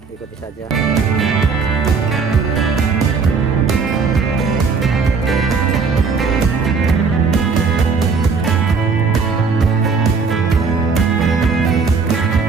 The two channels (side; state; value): left; quieter; 5.0 dB